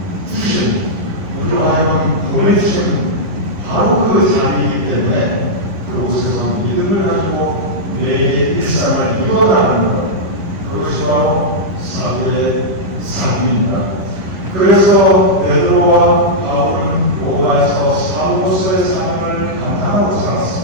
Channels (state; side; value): late; left; 10 ms